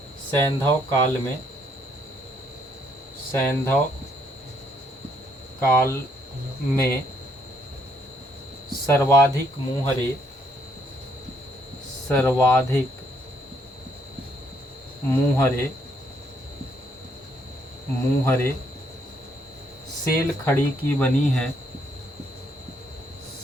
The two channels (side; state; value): both; normal; correlation 0.70